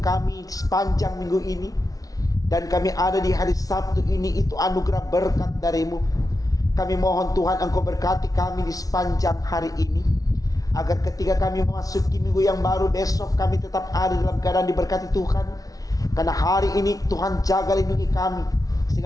sepanjang minggu ini. Dan kami ada di hari Sabtu ini, itu anugerah berkat darimu. Kami mohon Tuhan Engkau berkati kami di sepanjang hari ini, agar ketika kami memasuki minggu yang baru besok, kami tetap ada dalam keadaan diberkati Tuhan. Karena hari ini Tuhan jaga lindungi kami,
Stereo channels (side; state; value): right; late; 0.18 ms